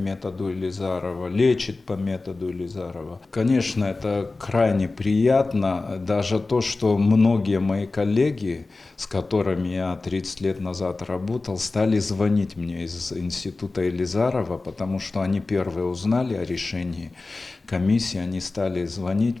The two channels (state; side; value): quieter; right; 3.5 dB